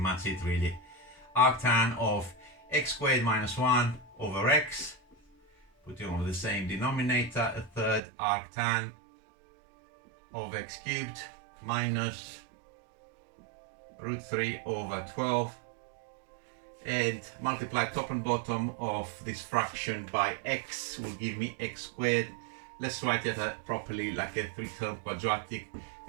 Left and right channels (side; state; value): left; drops out; at 8.0 s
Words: it really. Arctan of x squared minus 1 over x, putting over the same denominator, a third arctan of x cubed minus root 3 over 12, and multiply top and bottom of this fraction by x will give me x squared. Let's write it properly like a 3-term quadratic.